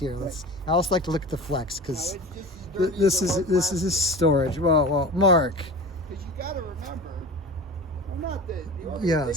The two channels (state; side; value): normal; both; correlation 0.33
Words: I always like to look at the Flex that. because No, it's this just as is dirty as this storage. Well, Mark. Because you got to remember, I'm not the Yes.